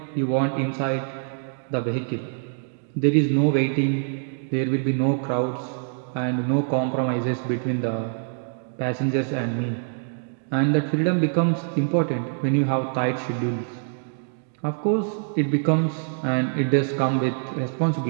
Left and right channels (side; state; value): left; silent; digital silence